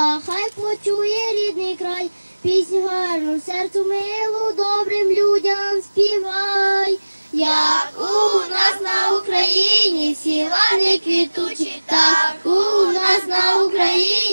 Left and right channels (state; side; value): inverted; both; correlation -1.00